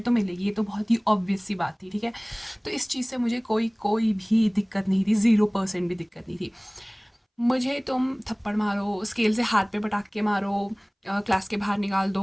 तो मिलेगी, ये तो बहुत ही ऑब्वियस सी बात थी, ठीक है। तो इस चीज़ से मुझे कोई कोई भी दिक्कत नहीं थी, 0% भी दिक्कत नहीं थी। मुझे तुम थप्पड़ मारो, स्केल से हाथ पे पटाख के मारो, क्लास के बाहर निकाल दो,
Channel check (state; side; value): identical; both; correlation 1.00